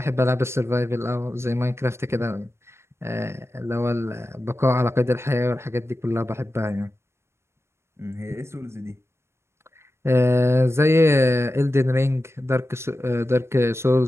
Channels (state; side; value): late; left; 0.13 ms